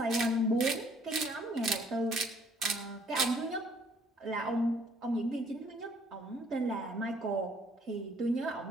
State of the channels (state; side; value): normal; both; correlation 0.61